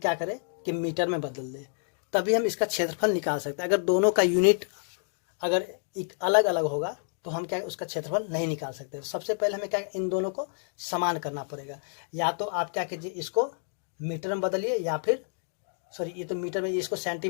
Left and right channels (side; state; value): right; silent; 59 dB below the other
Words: करें कि मीटर में बदल दे, तभी हम इसका क्षेत्रफल निकाल सकते हैं। अगर दोनों का यूनिट अगर अलग अलग होगा तो हम क्या उसका क्षेत्रफल नहीं निकाल सकते। सबसे पहले हमें क्या इन दोनों को समान करना पड़ेगा, या तो आप क्या कीजिए इसको मीटर में बदलिए, या फिर ये तो मीटर में, इसको